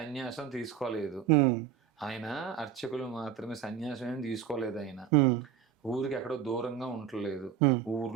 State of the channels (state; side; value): quieter; left; 8.5 dB